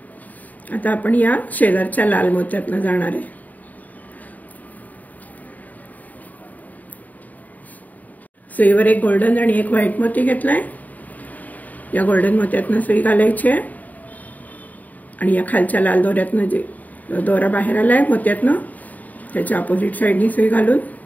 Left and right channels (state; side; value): late; right; 0.077 ms